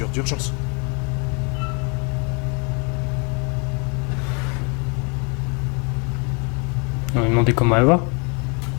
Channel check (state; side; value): quieter; right; 34.1 dB